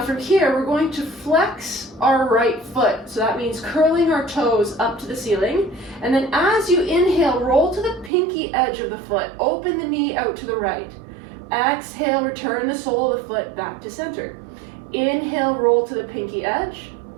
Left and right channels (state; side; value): drops out; left; at 8.1 s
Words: from here, we're going to flex our right foot. So that means curling our toes up to the ceiling. And then as you inhale, roll to the pinky edge of the foot. Open the knee out to the right. Exhale, return the sole of the foot back to center. Inhale, roll to the pinky edge.